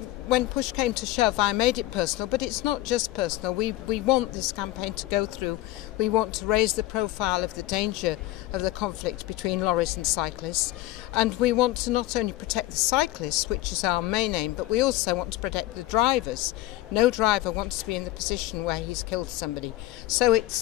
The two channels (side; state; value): right; quieter; 16.8 dB